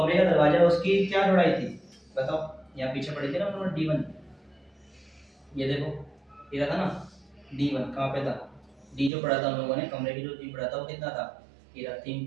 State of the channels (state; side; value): drops out; left; at 9.1 s